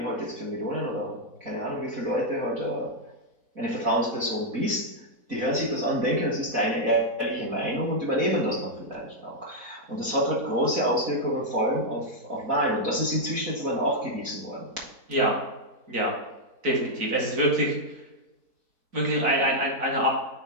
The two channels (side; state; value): left; late; 4.1 ms